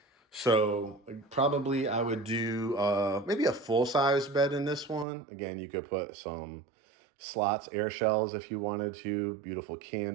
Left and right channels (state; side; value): drops out; left; at 5.1 s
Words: So probably I would do maybe a full-size bed in this one. Again, you could put some slots, air shells if you wanted to, beautiful